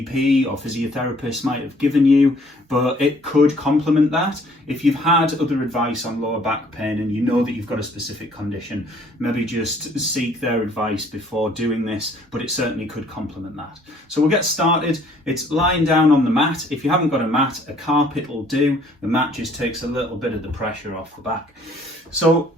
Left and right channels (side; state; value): both; normal; correlation 0.59